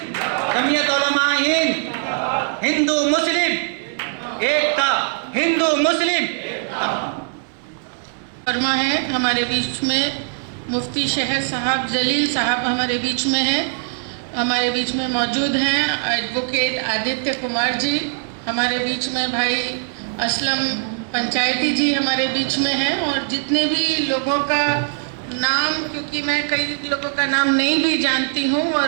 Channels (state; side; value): silent; left; digital silence